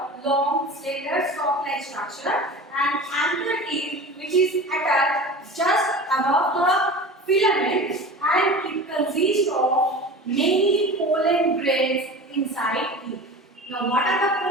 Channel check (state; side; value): normal; both; correlation 0.35